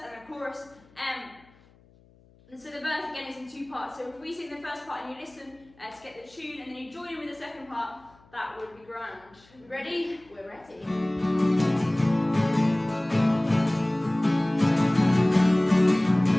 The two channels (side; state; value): left; noise; hum, 29 dB below the sound